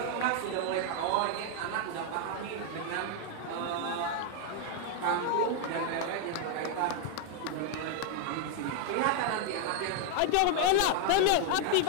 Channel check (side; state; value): both; different; correlation 0.00